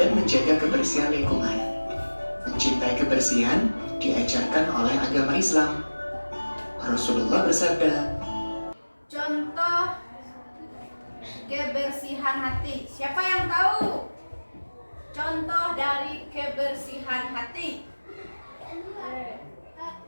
menjaga kebersihan lingkungan. Mencintai kebersihan diajarkan oleh agama Islam. Rasulullah bersabda, Contoh kebersihan hati. Siapa yang tahu? Contoh dari kebersihan hati.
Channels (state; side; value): inverted; both; correlation -1.00